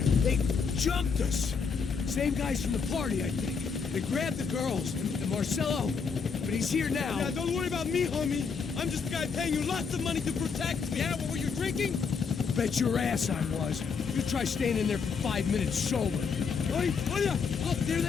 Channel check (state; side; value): quieter; right; 5.7 dB